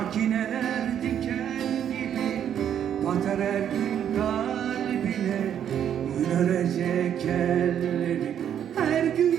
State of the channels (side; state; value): left; quieter; 9.4 dB